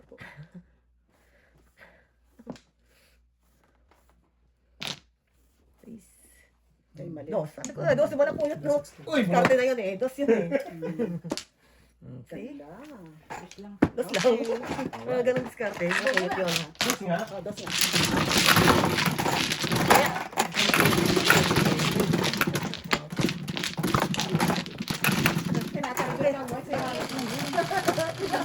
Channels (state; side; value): identical; both; correlation 1.00